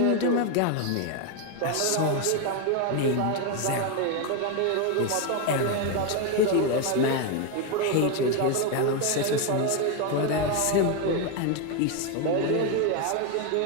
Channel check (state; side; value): different; both; correlation 0.01